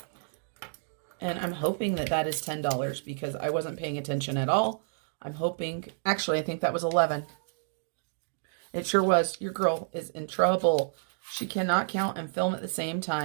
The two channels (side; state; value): left; silent; digital silence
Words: And I'm hoping that that is $10 because I wasn't paying attention at all. I'm hoping, actually, I think that was 11. It sure was. Your girl is in trouble. She cannot count and film at the same